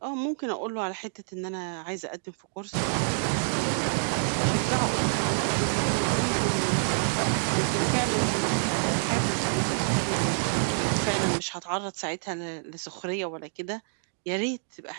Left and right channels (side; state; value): left; silent; digital silence